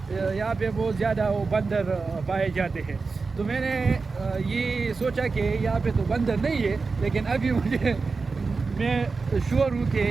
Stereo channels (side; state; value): left; quieter; 4.3 dB